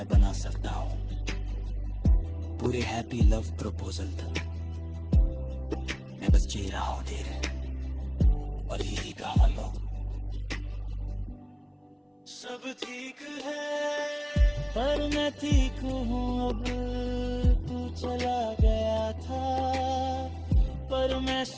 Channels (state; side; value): identical; both; correlation 1.00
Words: बना सकता हूँ। पूरे हैप्पी लव प्रपोजल तक मैं बस जी रहा हूँ धीरे, और यही कहा लो। सब ठीक है पर मैं ठीक हूँ अब। तू चला गया था पर मैं